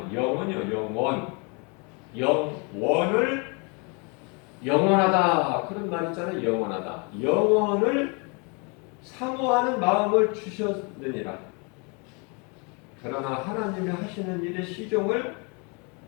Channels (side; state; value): right; quieter; 32.9 dB